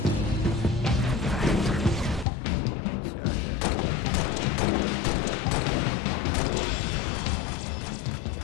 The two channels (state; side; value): drops out; right; at 2.2 s